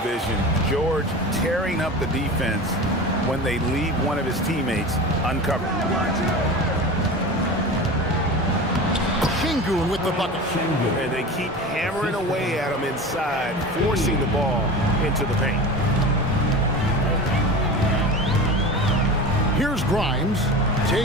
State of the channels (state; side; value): normal; both; correlation 0.32